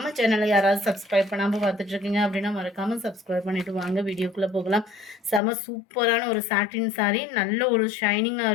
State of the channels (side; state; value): right; drops out; at 5.4 s